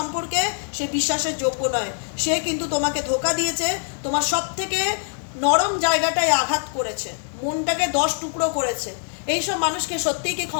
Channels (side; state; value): right; silent; 63 dB below the other